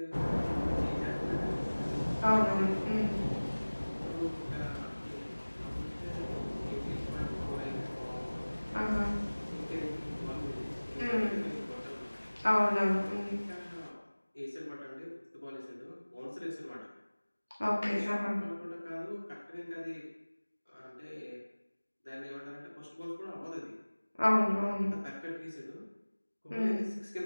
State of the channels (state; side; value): inverted; both; correlation -1.00